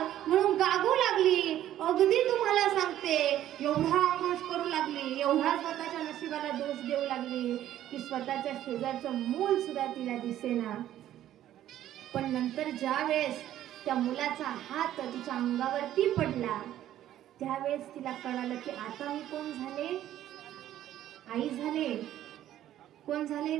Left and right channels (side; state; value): left; quieter; 12.4 dB